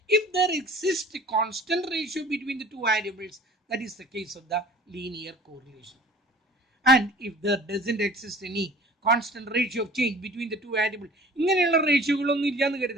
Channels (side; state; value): both; normal; correlation 0.46